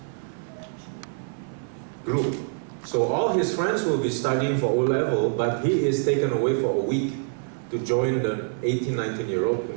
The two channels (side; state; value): left; silent; 57 dB below the other